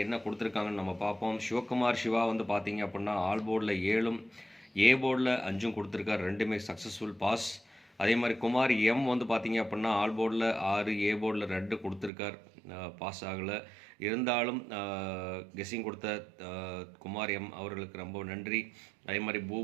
என்ன கொடுத்துருக்காங்கன்னு நம்ம பார்ப்போம். சிவகுமார் சிவா வந்து பார்த்தீங்க அப்படின்னா ஆல் போர்டில் 7ம் ஏ போர்டில் 5ம் கொடுத்துருக்கார், ரெண்டுமே சக்ஸஸ்ஃபுல் பாஸ். அதே மாதிரி குமார் எம் வந்து பார்த்தீங்க அப்படின்னா ஆல் போர்டில் 6 ஏ போர்டில் 2 கொடுத்துருக்கார், பாஸ் ஆகலை. இருந்தாலும் கெஸ்ஸிங் கொடுத்த குமார் எம் அவர்களுக்கு ரொம்ப நன்றி. அதே மாதிரி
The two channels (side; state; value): left; drops out; at 12.1 s